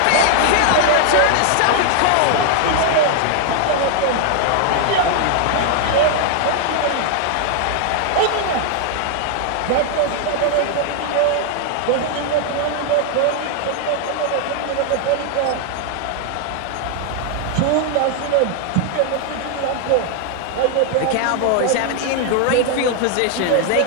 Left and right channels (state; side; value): different; both; correlation 0.00